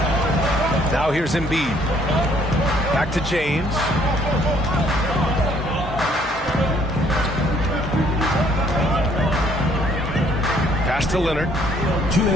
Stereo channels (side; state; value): both; normal; correlation 0.63